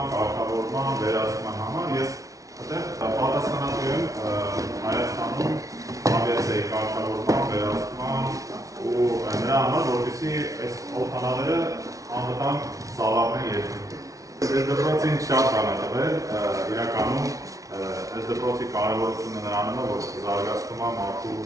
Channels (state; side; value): late; left; 0.17 ms